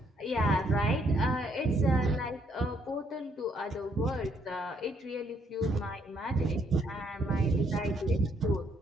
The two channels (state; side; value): normal; both; correlation 0.70